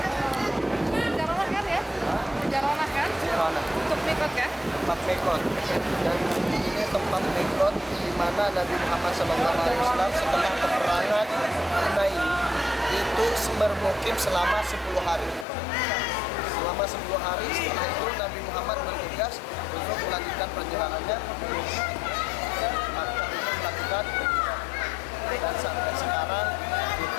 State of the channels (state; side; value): drops out; right; at 15.5 s